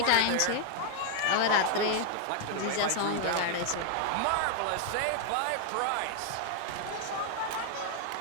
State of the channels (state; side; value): different; both; correlation 0.00